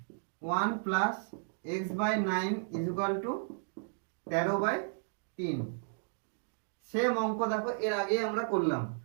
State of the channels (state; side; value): silent; left; digital silence